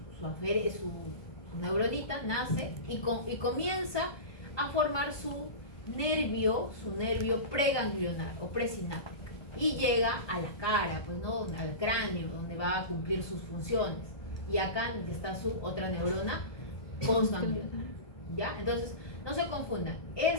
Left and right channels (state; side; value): late; right; 1.2 ms